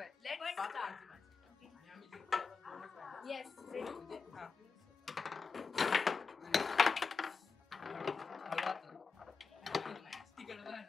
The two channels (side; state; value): right; quieter; 5.0 dB